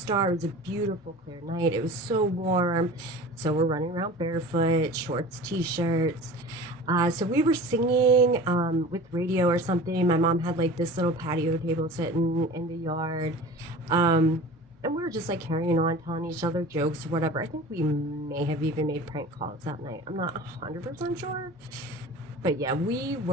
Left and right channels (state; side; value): normal; both; correlation 0.38